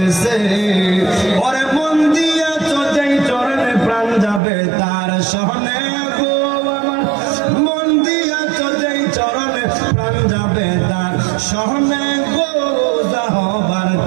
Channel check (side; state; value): left; drops out; at 4.4 s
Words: ওরে মন দিয়াছ যেই চরণে প্রাণ যাবে তার শোনে গো আমার, মন দিয়াছ যেই চরণে প্রাণ যাবে তার শোনে গো যাহবার